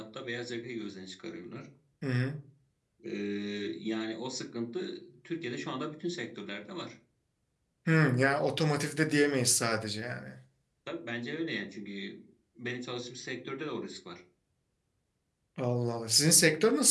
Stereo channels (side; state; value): both; identical; correlation 1.00